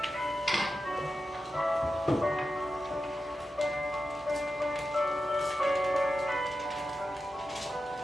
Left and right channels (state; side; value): normal; both; correlation 0.90